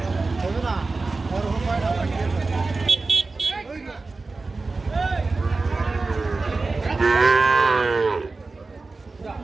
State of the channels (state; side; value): quieter; left; 3.7 dB